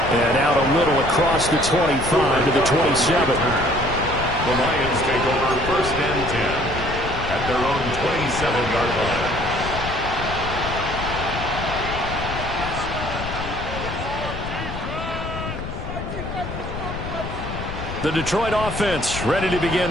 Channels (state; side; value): noise; left; rumble, 7 dB below the sound